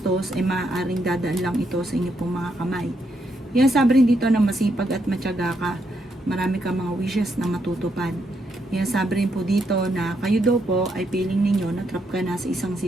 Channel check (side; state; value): both; normal; correlation 0.78